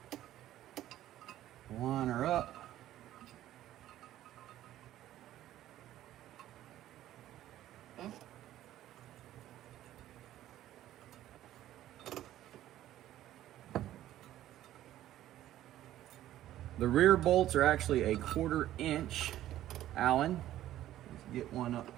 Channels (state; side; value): quieter; left; 13.3 dB